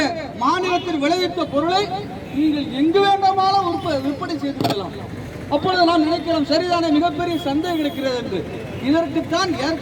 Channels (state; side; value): identical; both; correlation 1.00